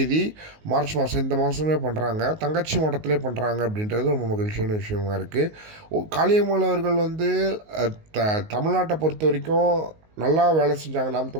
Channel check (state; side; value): late; left; 19 ms